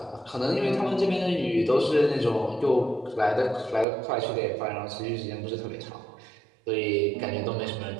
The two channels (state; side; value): drops out; left; at 3.9 s